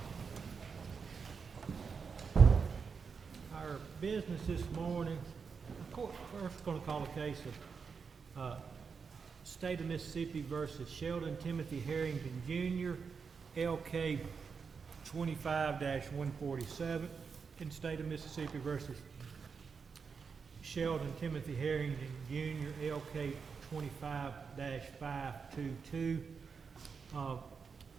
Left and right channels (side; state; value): left; quieter; 5.6 dB